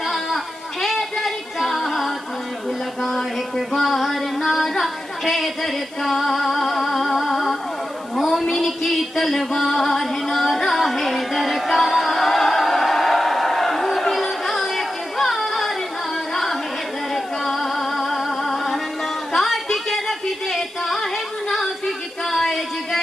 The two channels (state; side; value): noise; left; hiss, 25 dB below the sound